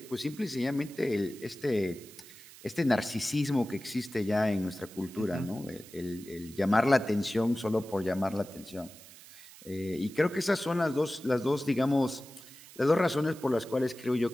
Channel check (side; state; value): right; noise; hiss, 19 dB below the sound